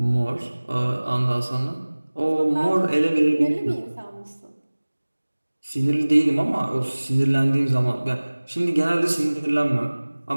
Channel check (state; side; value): inverted; both; correlation -1.00